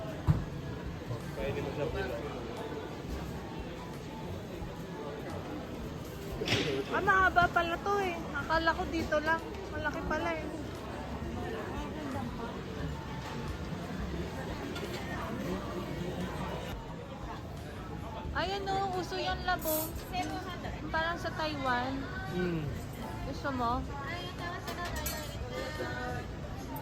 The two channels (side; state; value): both; identical; correlation 1.00